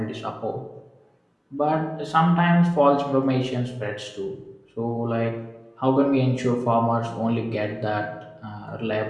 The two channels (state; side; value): identical; both; correlation 1.00